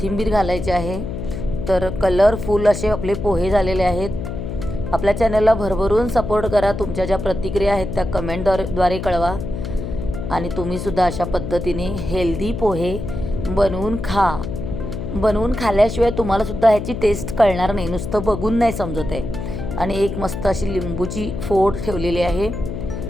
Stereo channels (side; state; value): left; noise; hum, 6 dB below the sound